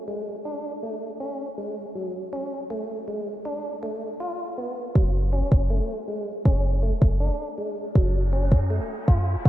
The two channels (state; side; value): normal; both; correlation 0.91